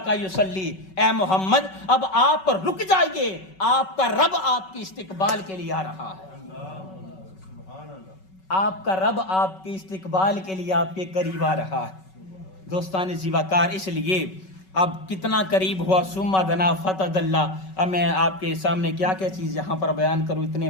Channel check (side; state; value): right; late; 5.3 ms